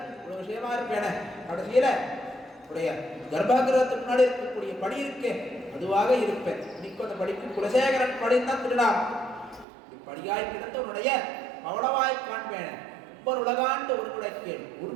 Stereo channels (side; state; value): left; drops out; at 9.7 s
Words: ஒரு விஷயமா இருப்பேன. கடைசியில உடைய கர்ப்பகிரகத்துக்கு முன்னாடி இருக்கக்கூடிய படி இருக்கே அதுவாக இருப்பேன். இன்னைக்கு அந்த படிக்கு குலசேகரன் படிந்தான் திருடாம். படியாய் கிடந்த உன்னுடைய பவளவாய் காண்பேன். ஒவ்வொரு உலகாண்டு ஒரு குடைக்கேள்